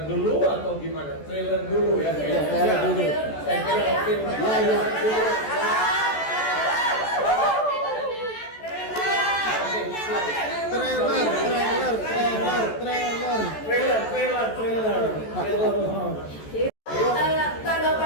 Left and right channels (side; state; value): right; late; 14 ms